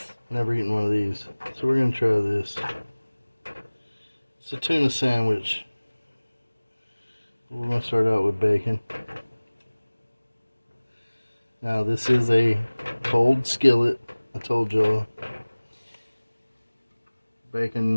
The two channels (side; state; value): both; inverted; correlation -1.00